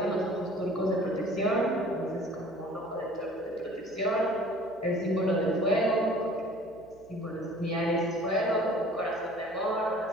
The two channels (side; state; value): right; noise; hum, 28 dB below the sound